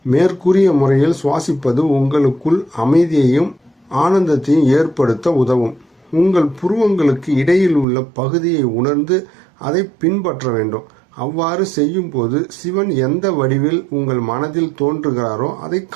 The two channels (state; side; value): drops out; left; at 7.9 s